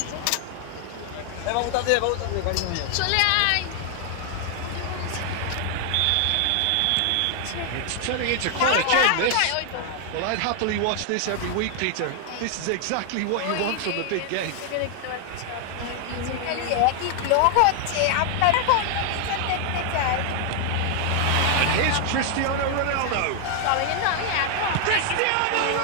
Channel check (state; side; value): different; both; correlation 0.00